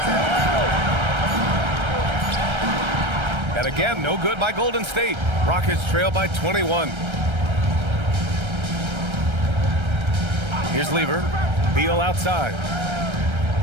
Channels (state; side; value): late; left; 1.3 ms